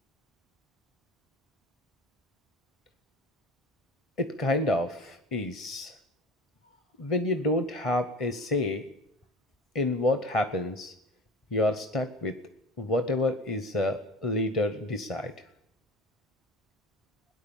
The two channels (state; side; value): normal; both; correlation 0.36